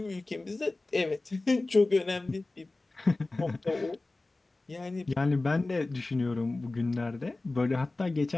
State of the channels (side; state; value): right; quieter; 3.1 dB